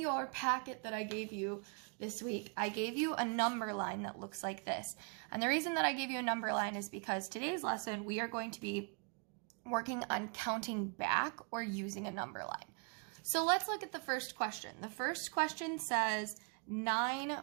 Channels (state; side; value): quieter; left; 38.6 dB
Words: packet that I gave you this week, I gave you a number line that looks like this. And the reason that I gave you a number line is because today's lesson, we are going to be working on counting back or using a number line. So let's look at the first question. The first question says 9